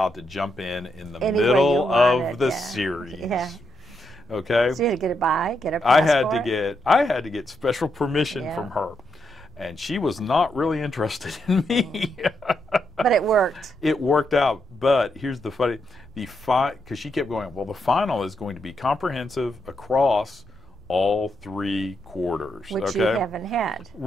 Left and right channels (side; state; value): right; noise; rumble, 23 dB below the sound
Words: to jump in the middle of the series. Yeah. Okay. So you had to get a passport. I had to get special permission from her, and she was not really interested in me. But it worked. It worked out. But here's the funny, because she kept going, well, the final is going to be comprehensive across all 3 quarters. Which you haven't had.